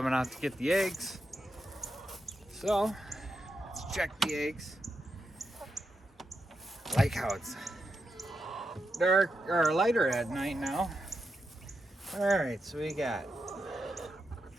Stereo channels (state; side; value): normal; both; correlation 0.86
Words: out to get the eggs. So, let's check the eggs. I like how it's dark or lighter at night now. All right, so we got